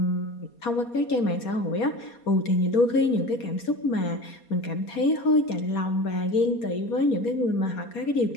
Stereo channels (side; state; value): right; late; 4.2 ms